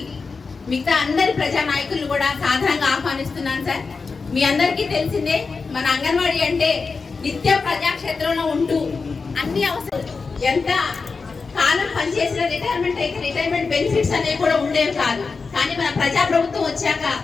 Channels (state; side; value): quieter; right; 4.6 dB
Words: మిగతా అందరి ప్రజా నాయకులు కూడా సాధారణంగా ఆహ్వానిస్తున్నాను సార్. మీ అందరికీ తెలిసిందే, మన అంగన్వాడీ అంటే నిత్యం ప్రజాక్షేత్రంలో ఉంటూ అన్ని అవసరం ఎంత కాలం పనిచేసిన రిటైర్మెంట్ అయితే రిటైర్మెంట్ బెనిఫిట్స్ అనేవి కూడా ఉండేవి కాదు. కానీ మన ప్రజాప్రభుత్వం వచ్చాక